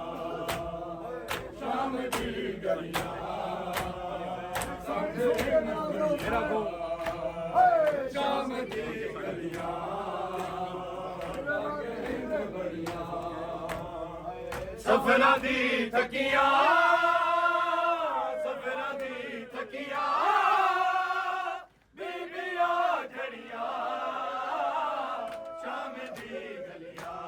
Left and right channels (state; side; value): identical; both; correlation 1.00